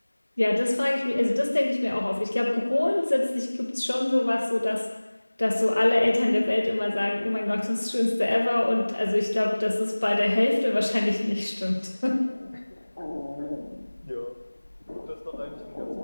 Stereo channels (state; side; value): inverted; both; correlation -1.00